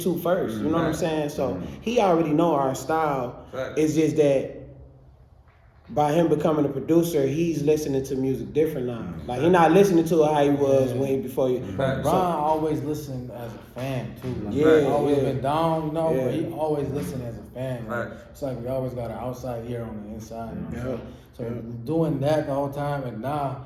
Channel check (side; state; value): both; identical; correlation 1.00